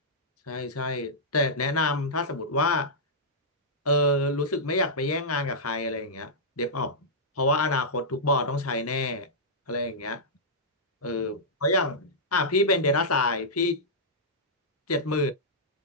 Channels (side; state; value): both; normal; correlation -0.12